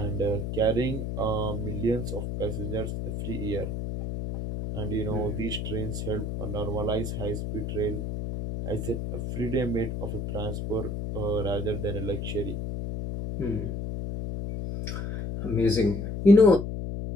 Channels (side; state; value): left; noise; hum, 4 dB below the sound